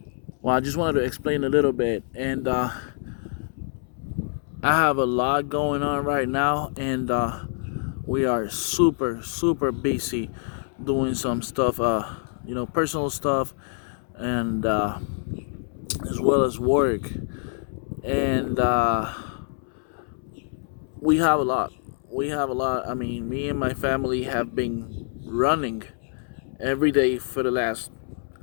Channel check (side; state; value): right; silent; 61 dB below the other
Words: I just wanted to explain a little bit, and I have a lot going on right now, and we are super busy doing some stuff, personal stuff, and as well as work, and we have a lot. We have a lot. I mean, me and my family have been running every day for the last,